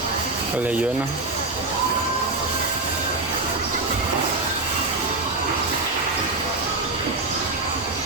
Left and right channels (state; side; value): quieter; left; 3.3 dB